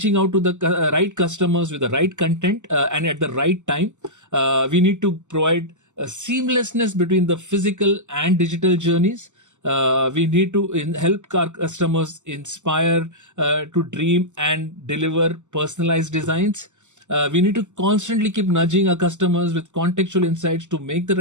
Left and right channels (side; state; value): left; late; 0.84 ms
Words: out to the right customers with the right content and at the right time. We need to provide a seamlessness between the physical and digital journeys. We need to help our customers inspire to dream and deliver personalized designs. We need to constantly keep nudging our customers with contextual insights to make the